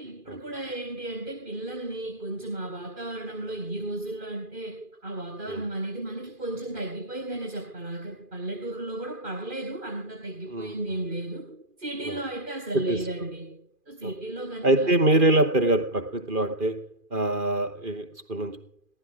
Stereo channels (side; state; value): left; late; 2.4 ms